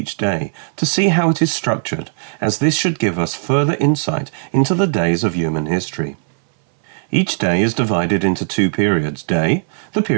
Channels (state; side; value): silent; left; 62 dB below the other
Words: day to see how it is structured, as this should give us further insight into the days of human history. Each day is divided into 2 periods: day, the